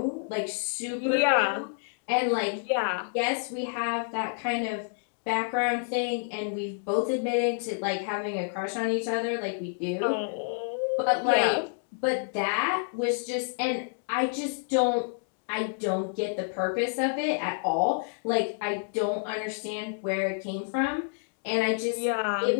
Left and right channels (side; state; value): right; silent; digital silence